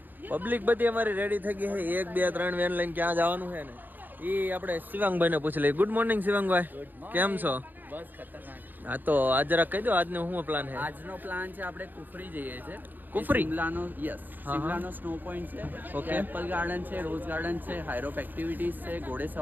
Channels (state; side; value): late; left; 0.087 ms